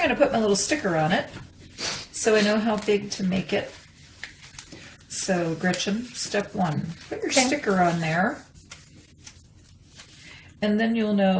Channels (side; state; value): both; identical; correlation 1.00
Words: going to put my little sticker on it. So I know how big to make it. So Gretchen, step one, put your sticker on there. And then you'll